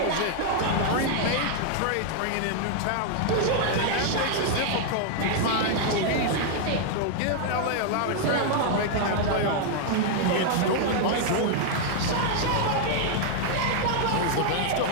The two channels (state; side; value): different; both; correlation 0.00